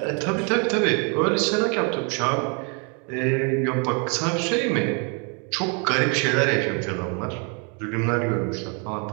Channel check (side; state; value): left; quieter; 35.6 dB